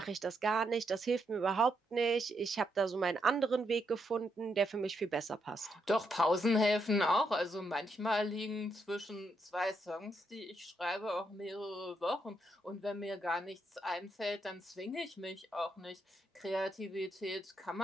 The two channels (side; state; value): both; normal; correlation 0.79